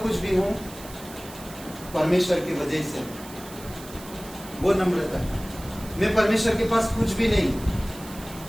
भी हूं परमेश्वर की वजह से, वो नम्रता है। मैं परमेश्वर के पास कुछ भी नहीं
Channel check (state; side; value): noise; right; hiss, 17 dB below the sound